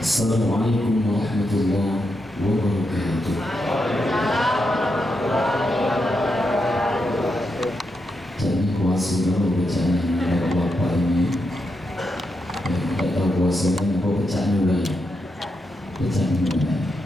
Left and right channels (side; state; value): both; normal; correlation 0.84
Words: Assalamualaikum warahmatullahi wabarakatuh. Jadi kuasa dulu bacaan bapak ini. Yang tidak tahu kuasanya apa bacaan juga. Bacaan juga.